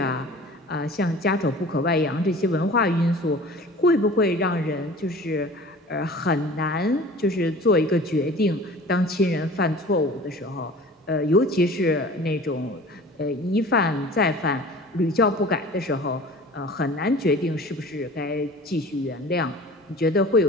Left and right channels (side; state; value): both; normal; correlation 0.43